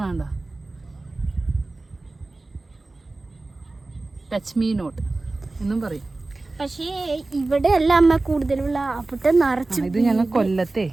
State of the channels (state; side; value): quieter; left; 3.2 dB